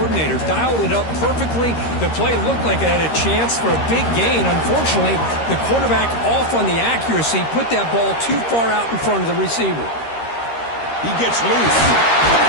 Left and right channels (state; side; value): late; right; 13 ms